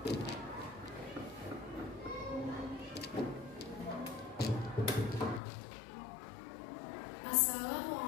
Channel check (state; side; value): drops out; right; at 5.4 s